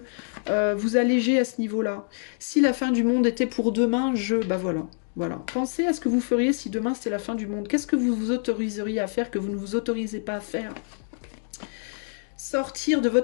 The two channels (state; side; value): silent; right; digital silence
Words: vous alléger à ce niveau-là. Si la fin du monde était pour demain, voilà. Voilà. Pensez à ce que vous feriez si demain c'était la fin du monde. Qu'est-ce que vous vous autoriseriez à faire que vous ne vous autorisez pas à faire ? Sortir de